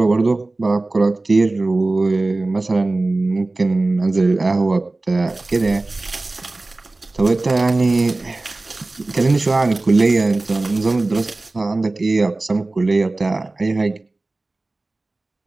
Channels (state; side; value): quieter; left; 3.1 dB